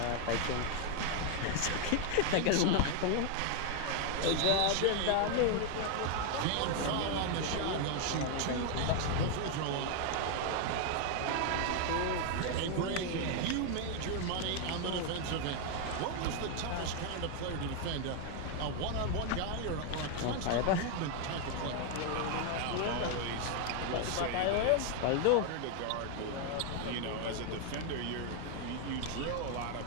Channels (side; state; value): both; different; correlation 0.01